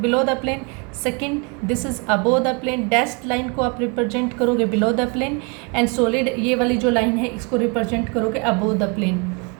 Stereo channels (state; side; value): quieter; left; 33.2 dB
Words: the plane, second this is above the plane, dashed line को आप रिप्रेजेंट करोगे below the plane, and solid ये वाली जो लाइन है इसको रिप्रेजेंट करोगे अबोव द प्लेन,